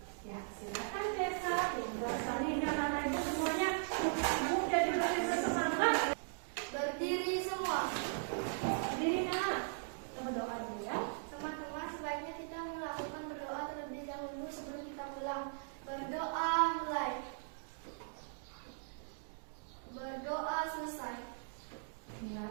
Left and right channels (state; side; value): silent; left; digital silence